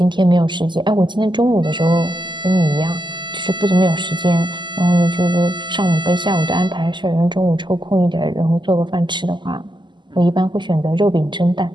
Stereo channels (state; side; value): late; left; 0.22 ms